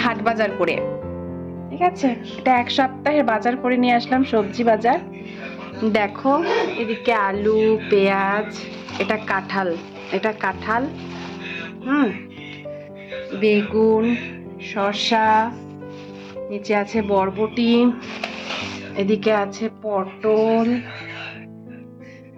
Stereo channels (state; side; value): identical; both; correlation 1.00